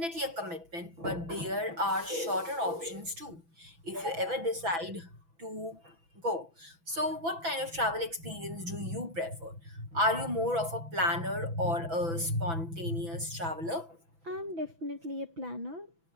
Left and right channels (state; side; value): late; left; 6.0 ms